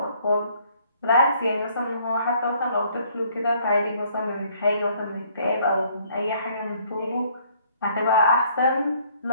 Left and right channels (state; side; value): inverted; both; correlation -0.62